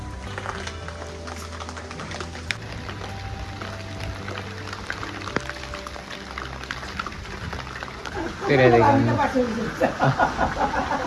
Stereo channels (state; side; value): identical; both; correlation 1.00